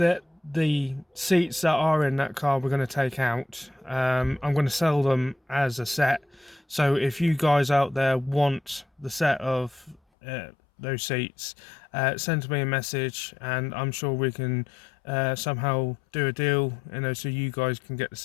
the seats that are in that car we're going to take out. I'm going to sell them as a set. So if you guys out there want the set of those seats, send me a message, and I'm sure we can somehow do a deal, you know, so you guys can get the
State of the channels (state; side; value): drops out; right; at 10.0 s